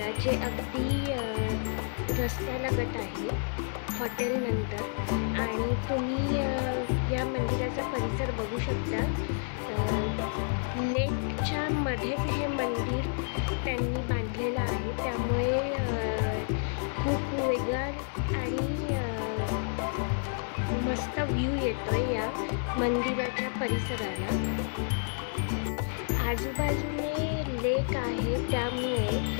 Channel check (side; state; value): right; silent; 58 dB below the other